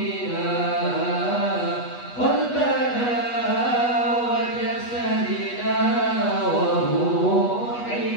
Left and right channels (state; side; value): late; right; 8.2 ms